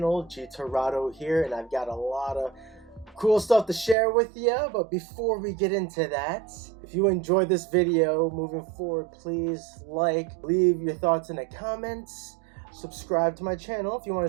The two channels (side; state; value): left; drops out; at 4.0 s